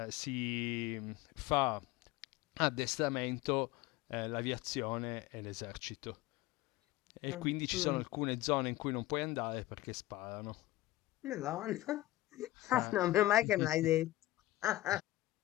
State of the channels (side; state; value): right; quieter; 16.9 dB